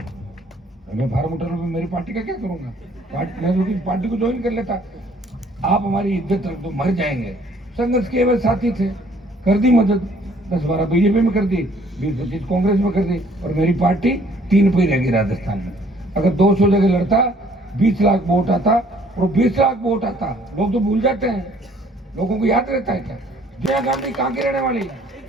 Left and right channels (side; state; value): both; normal; correlation 0.60